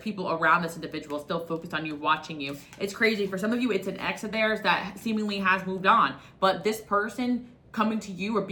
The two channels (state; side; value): identical; both; correlation 1.00